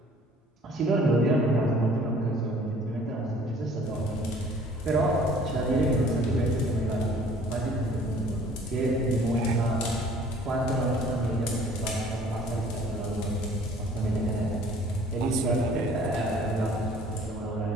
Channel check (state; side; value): normal; both; correlation 0.53